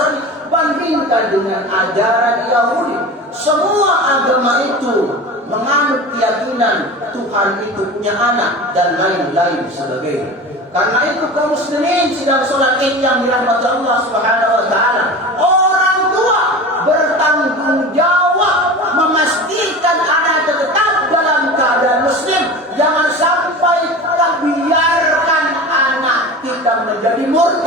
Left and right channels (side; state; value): both; normal; correlation 0.33